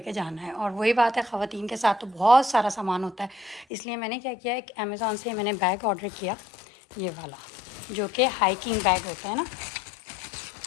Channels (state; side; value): drops out; right; at 3.7 s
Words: जाना है। और वही बात है, ख़वातीन के साथ तो बहुत सारा सामान होता है, इसलिए मैंने क्या किया, एक अमेज़ॉन से मैंने बैग ऑर्डर किया, ये वाला, जो कि हाइकिंग बैग होता है ना,